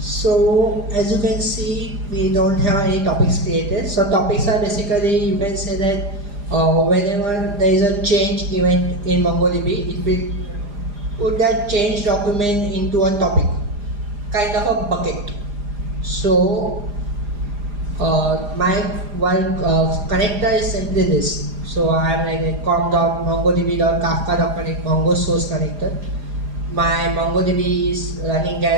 as you can see, we don't have any topics created. So topics are basically, you can say that whenever there is a change event in MongoDB, it will put that change document into a topic, kind of a bucket. So my one connector is simply this. So I am like a com.mongodb.kafka.connect Mongo source connector. My MongoDB is running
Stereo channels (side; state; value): left; late; 4.9 ms